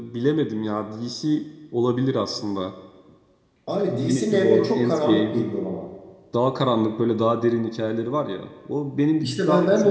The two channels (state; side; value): identical; both; correlation 1.00